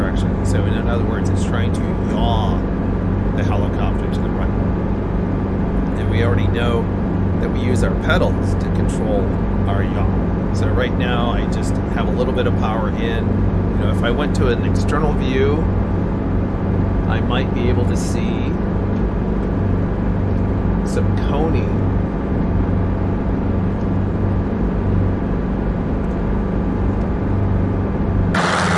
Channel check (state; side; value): identical; both; correlation 1.00